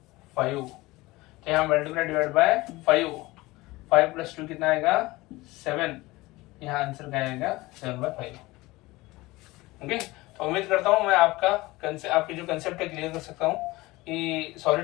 तो यहाँ मल्टीप्लाई डिवाइड बाय 5, 5 + 2 कितना आएगा, 7। यहाँ आंसर क्या आएगा, 7/5। ओके, तो उम्मीद करता हूँ मैं आपकी जो कंसेप्ट है क्लियर कर सकता हूँ कि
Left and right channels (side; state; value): right; quieter; 20.5 dB